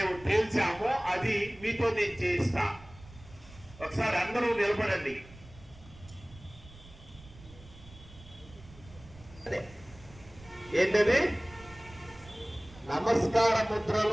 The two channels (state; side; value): noise; right; rumble, 20 dB below the sound